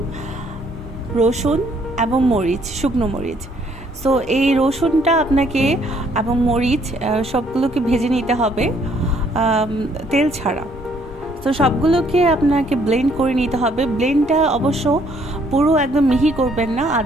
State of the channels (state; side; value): normal; both; correlation 0.65